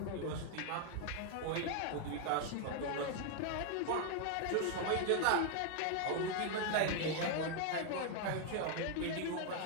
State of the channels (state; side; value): different; both; correlation 0.00